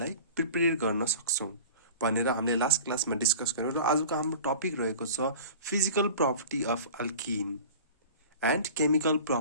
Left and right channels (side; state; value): both; inverted; correlation -0.39